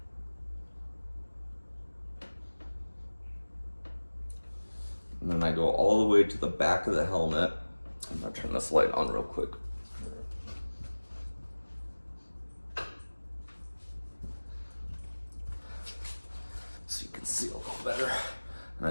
And then I go all the way to the back of the helmet. I'm gonna turn this light on real quick. So you can see a little better. And I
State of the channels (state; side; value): inverted; both; correlation -1.00